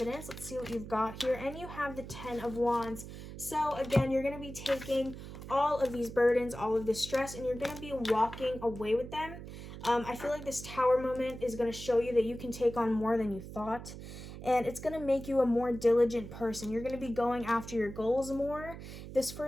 Let's see what you've got here. And you have the 10 of Wands. So again, you're going to be taking all of these burdens, all of this stress, and you're going to be walking away with them. I feel like this Tower moment is going to show you that you can take on more than you thought. And it's going to make you a more diligent person. You're going to be going after your goals more this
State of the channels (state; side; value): noise; right; hum, 11 dB below the sound